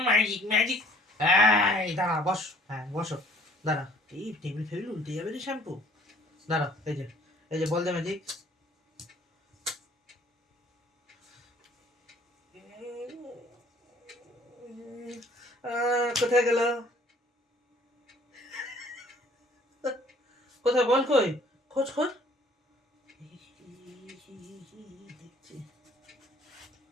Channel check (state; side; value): normal; both; correlation 0.56